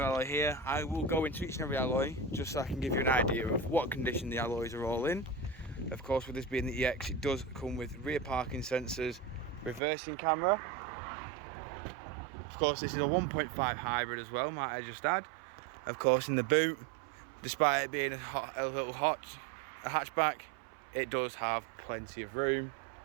alloy here. I will go into each and every alloy just so I can give you an idea of what condition the alloys are all in. Of course, with this being the EX, it does come with rear parking sensors, reversing camera. Of course, this is a 1.5 hybrid as well, might I just add. Of course, in the boot, despite it being a hatchback, it does have plenty of room.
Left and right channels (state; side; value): drops out; left; at 9.8 s